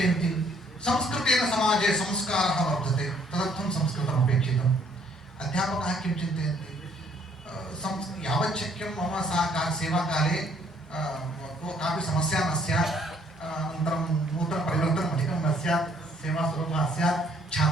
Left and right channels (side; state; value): both; normal; correlation 0.64